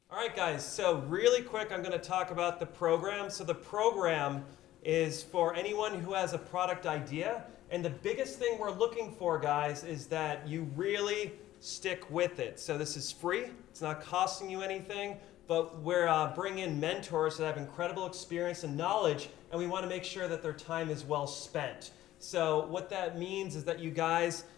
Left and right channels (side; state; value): right; quieter; 14.3 dB